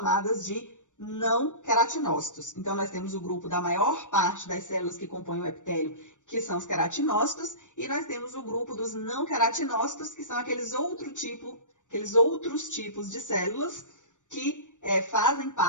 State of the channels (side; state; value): right; late; 0.86 ms